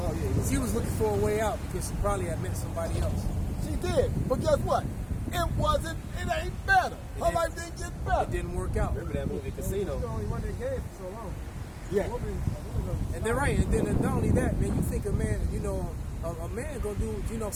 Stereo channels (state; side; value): identical; both; correlation 1.00